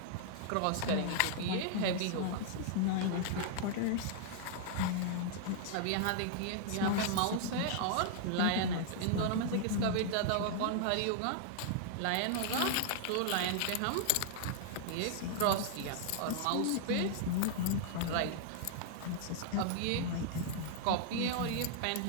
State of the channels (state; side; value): different; both; correlation -0.01